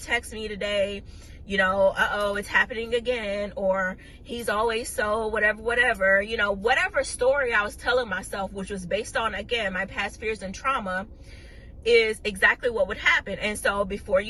me today. You know, uh-oh, it's happening again. Or he's always so whatever, you know, whatever story I was telling myself, which was based on, again, my past fears and trauma, is exactly what would happen. And so before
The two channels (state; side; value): identical; both; correlation 1.00